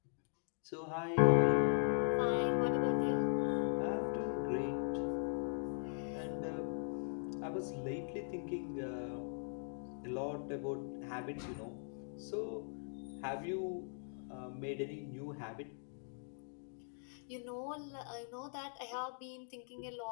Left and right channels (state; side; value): silent; right; digital silence